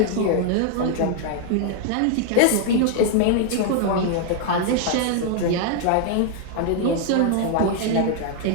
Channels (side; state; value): both; different; correlation 0.00